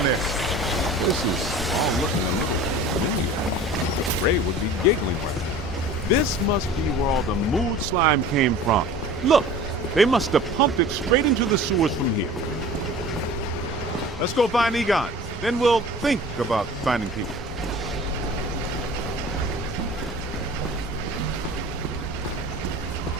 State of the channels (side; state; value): both; normal; correlation 0.41